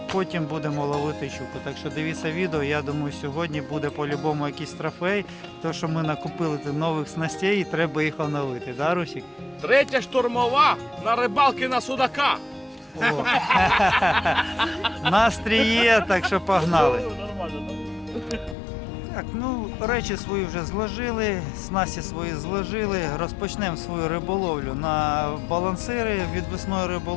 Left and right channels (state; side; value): drops out; right; at 18.6 s